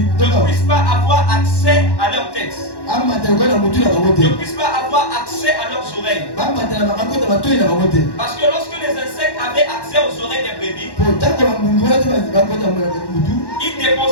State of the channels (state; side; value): late; right; 1.1 ms